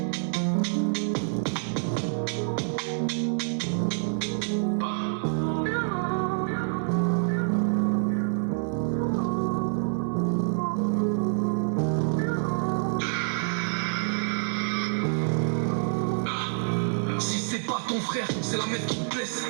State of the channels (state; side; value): silent; left; 56 dB below the other